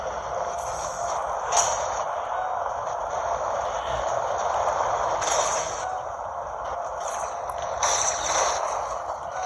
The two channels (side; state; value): both; identical; correlation 1.00